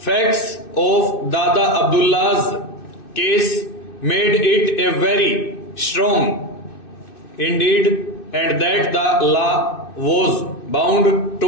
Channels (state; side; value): late; right; 2.6 ms